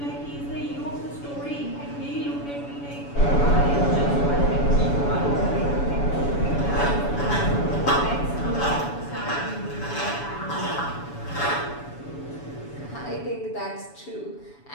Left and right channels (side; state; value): right; late; 7.0 ms